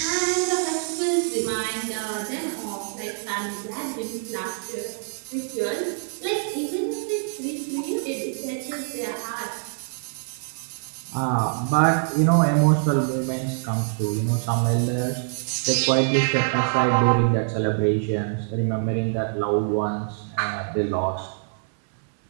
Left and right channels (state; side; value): silent; left; 62 dB below the other